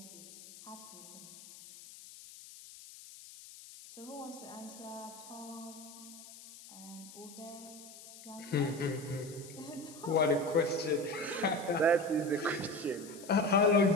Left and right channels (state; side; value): noise; left; hiss, 17 dB below the sound